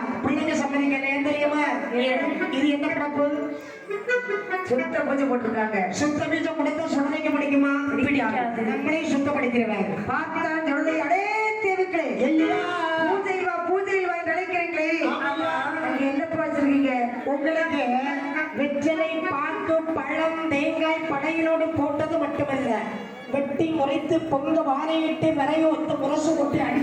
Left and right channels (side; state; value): both; identical; correlation 1.00